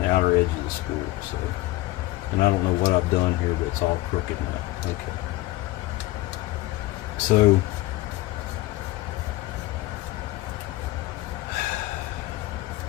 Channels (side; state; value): right; quieter; 18.1 dB